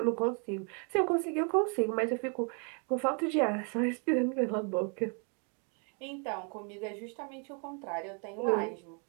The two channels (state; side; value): quieter; left; 38.2 dB